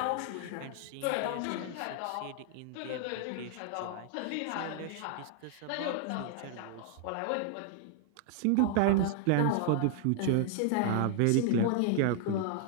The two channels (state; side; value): different; both; correlation 0.00